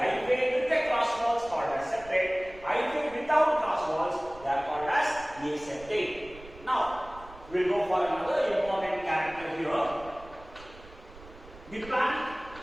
with the cross walls called as septate. Hyphae without cross walls, they are called as aseptate. Now, we will go for another important character here. The plant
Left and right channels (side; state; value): right; noise; rumble, 19 dB below the sound